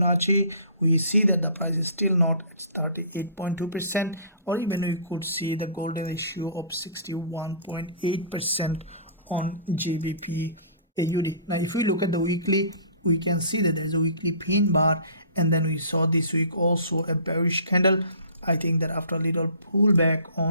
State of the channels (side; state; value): both; inverted; correlation -0.46